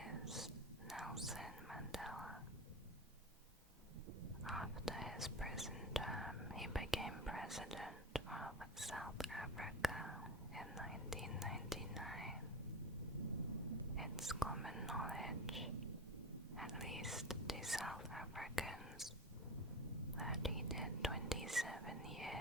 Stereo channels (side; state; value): both; normal; correlation 0.26